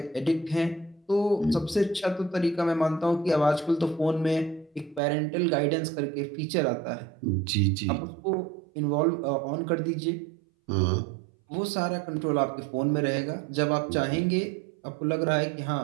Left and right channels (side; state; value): left; drops out; at 5.0 s